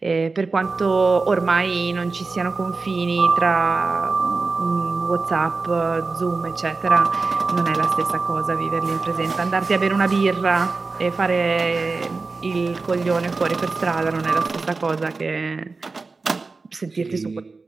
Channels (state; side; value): quieter; left; 4.0 dB